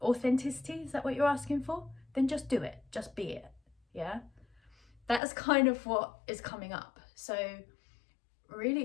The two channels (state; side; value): drops out; right; at 5.2 s